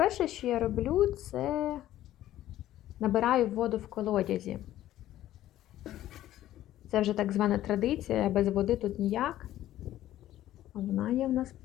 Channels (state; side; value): quieter; right; 13.5 dB